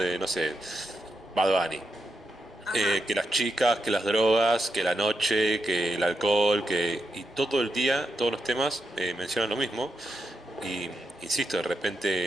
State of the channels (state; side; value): normal; both; correlation 0.84